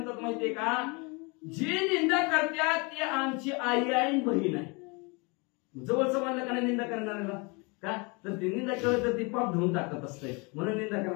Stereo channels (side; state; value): right; quieter; 29.6 dB